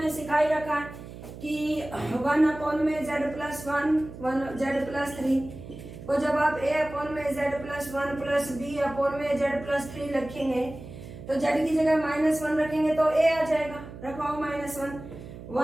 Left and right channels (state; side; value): noise; right; hum, 13 dB below the sound